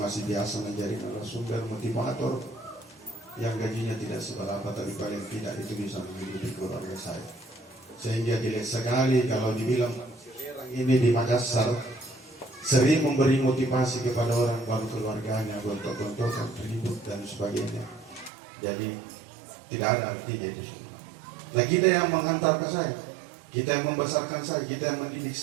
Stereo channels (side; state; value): left; drops out; at 18.3 s